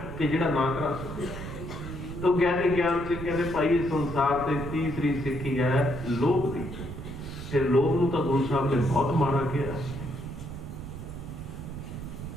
ਕਿ ਜਿਹੜਾ ਨਾ ਕਰਾ ਸਕਿਆ। ਤਾਂ ਗਿਆਨੀ ਗਿਆਨ ਸਿੰਘ ਕਹਿੰਦੇ ਭਾਈ ਇਸ ਸੰਸਾਰ ਤੇ ਤੀਸਰੀ ਸਿੱਖੀ ਹੈ ਲੋਭ ਦੀ। ਫਿਰ ਲੋਭ ਨੂੰ ਤਾਂ ਗੁਰੂ ਸਾਹਿਬ ਨੇ ਬਹੁਤ ਮਾੜਾ ਕਿਹਾ।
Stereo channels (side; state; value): right; noise; rumble, 9 dB below the sound